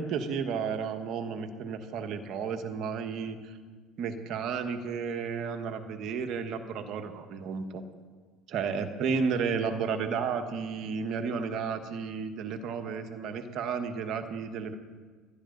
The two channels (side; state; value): left; quieter; 5.5 dB